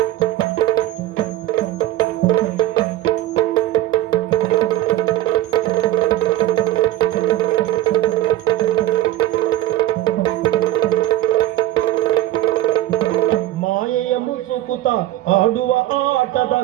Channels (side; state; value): left; quieter; 14.5 dB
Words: ಮಾಯೆಯ ಮುಸುಕುತ ಆಡುವ ಆಟದ